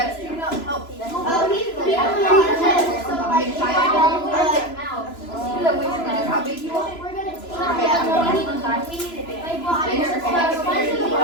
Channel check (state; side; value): late; right; 3.0 ms